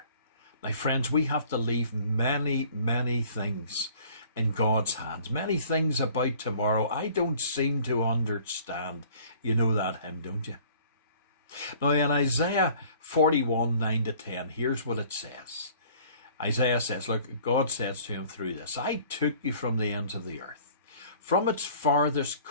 Now, friends, we have to leave many, many things in God's hands. Many things about tomorrow I don't seem to understand. You know that hymn, don't you? Now, in Isaiah 41, 9-10, here's what it says. Isaiah says, look, God says to him through this, I took you from the ends of the earth. From its farthest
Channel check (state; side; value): inverted; both; correlation -0.52